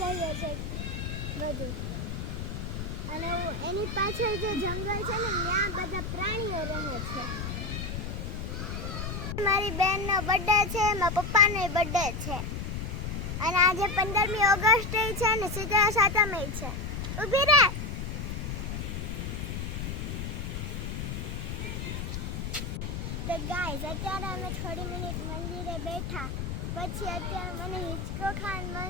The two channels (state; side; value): noise; left; rumble, 4 dB below the sound